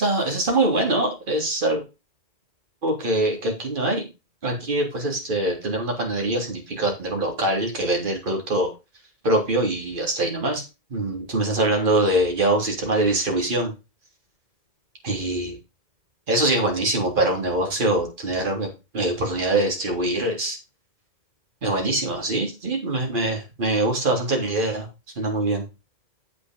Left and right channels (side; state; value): left; late; 2.5 ms